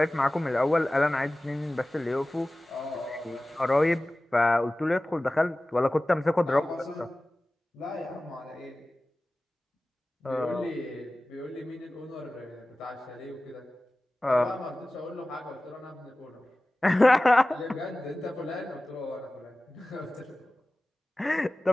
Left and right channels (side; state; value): both; normal; correlation 0.97